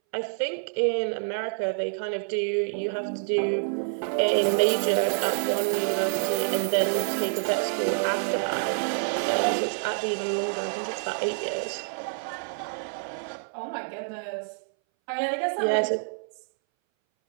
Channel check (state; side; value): silent; left; 60 dB below the other